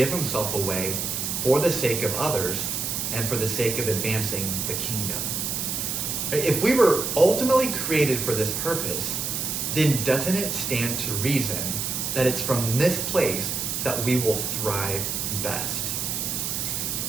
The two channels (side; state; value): right; noise; hiss, 2 dB below the sound